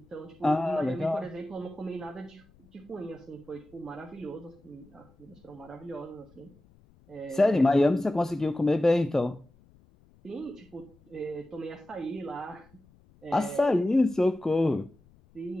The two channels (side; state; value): left; noise; rumble, 29 dB below the sound